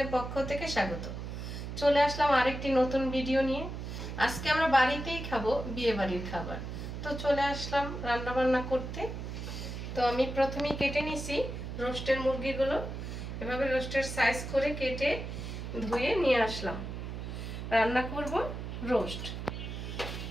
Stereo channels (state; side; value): noise; right; hum, 7 dB below the sound